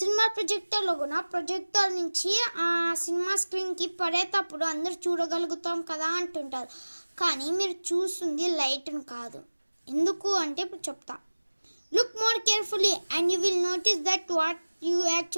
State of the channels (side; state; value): both; inverted; correlation -1.00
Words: ప్రొజెక్టర్లో కూడా ప్రొజెక్టర్ నుంచి ఆ సినిమా స్క్రీన్కి పడేటప్పుడు అందరూ చూడగలుగుతాం కదా అంటుంటారు. కానీ మీరు చూస్తుంది లైట్ను కాదు. ఎందుకు అంటే ఇప్పుడు చెప్తా. Look more carefully and you will notice that what you